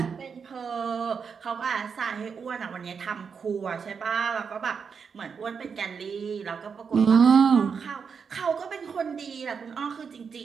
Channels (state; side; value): quieter; left; 6.1 dB